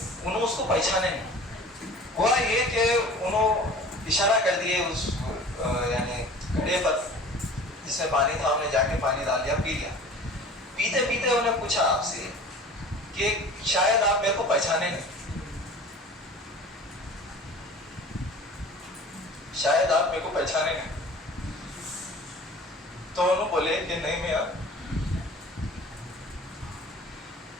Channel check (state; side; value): normal; both; correlation 0.42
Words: انہوں اس کو پہچانے نہیں۔ ہوا یہ کہ انہوں اشارہ کر دیے اس یعنی گھڑے پر جس میں پانی تھا، انہیں جا کے پانی ڈال دیا، پی لیا۔ پیتے پیتے انہیں پوچھا آپ سے کہ شاید آپ میرے کو پہچانے نہیں، شاید آپ میرے کو پہچانے نہیں۔ تو انہوں بولے کہ نہیں میاں،